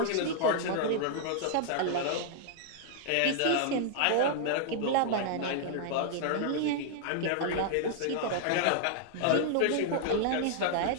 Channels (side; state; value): both; different; correlation -0.01